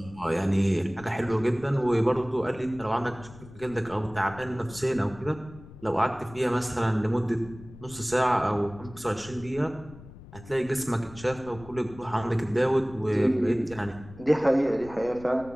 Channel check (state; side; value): noise; left; rumble, 18 dB below the sound